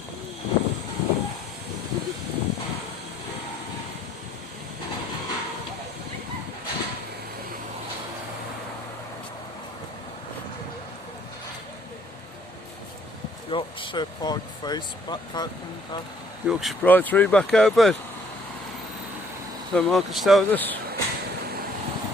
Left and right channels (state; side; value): normal; both; correlation 0.61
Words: Yorkshire Pride face back open. Yorkshire Pride 3 back open. So Marcus told us.